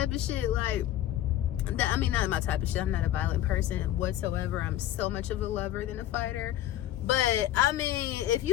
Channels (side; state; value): right; quieter; 12.8 dB